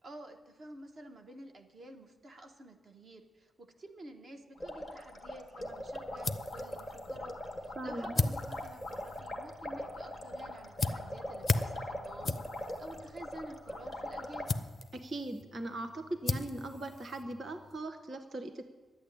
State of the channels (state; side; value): normal; both; correlation 0.89